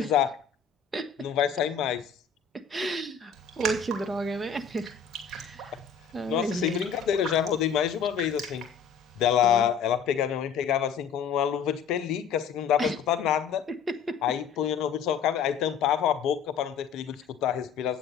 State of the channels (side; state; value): right; quieter; 6.8 dB